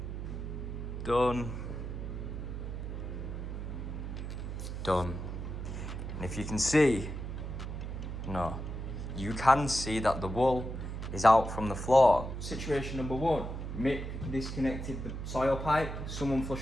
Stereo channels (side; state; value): right; noise; hum, 6 dB below the sound